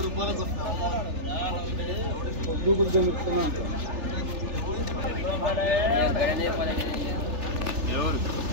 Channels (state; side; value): late; left; 3.4 ms